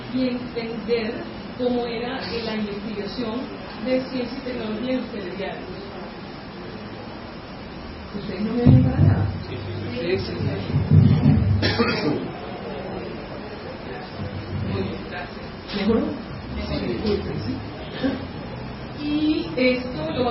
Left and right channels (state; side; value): identical; both; correlation 1.00